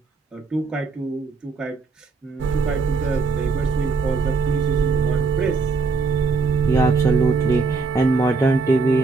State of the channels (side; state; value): left; quieter; 4.4 dB